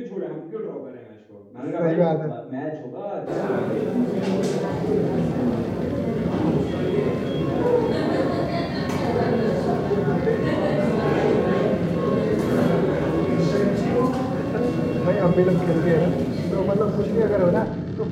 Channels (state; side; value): identical; both; correlation 1.00